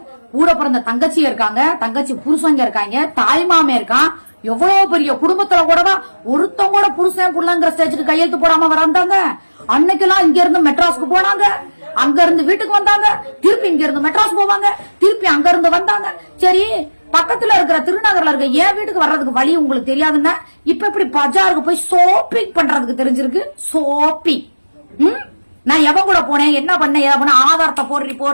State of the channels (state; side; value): inverted; both; correlation -1.00